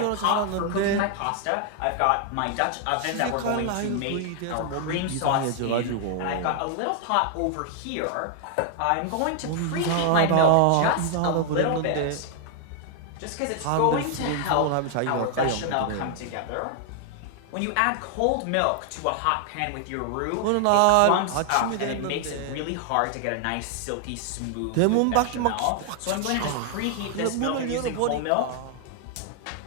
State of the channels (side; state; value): both; different; correlation 0.00